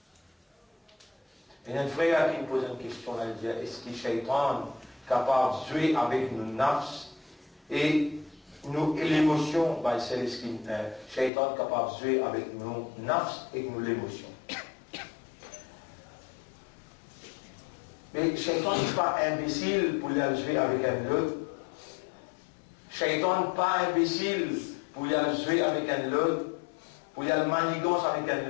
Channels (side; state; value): right; drops out; at 11.3 s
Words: Il y a un frère qui me pose une question, là, il dit, est-ce que Shaitan est capable de jouer avec nos nafs et l'émotion, ben, c'est ce qui Shaitan est capable de jouer avec nos nafs et nous l'émotion. Mais Shaitan n'est pas imbécile pour aller jouer avec un autre. Shaitan n'est pas imbécile pour aller jouer avec un autre, pour aller manigance avec un